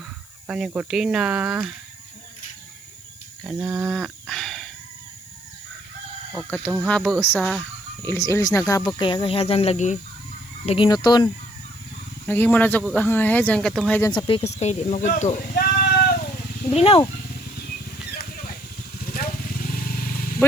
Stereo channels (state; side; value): noise; left; hiss, 24 dB below the sound